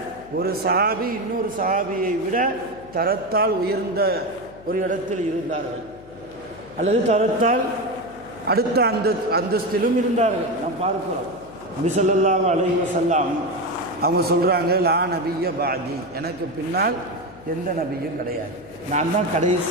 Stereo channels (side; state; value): left; noise; hum, 21 dB below the sound